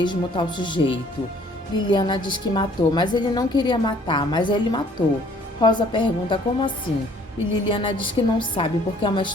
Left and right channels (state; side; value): normal; both; correlation 0.58